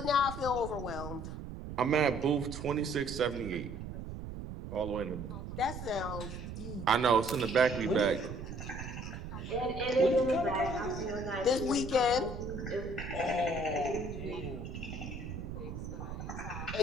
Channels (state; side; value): noise; right; rumble, 8 dB below the sound